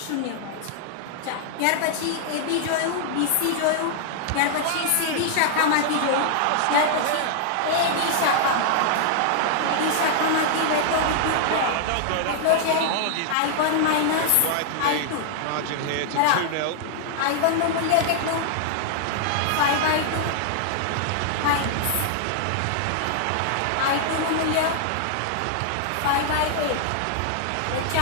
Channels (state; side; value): different; both; correlation -0.01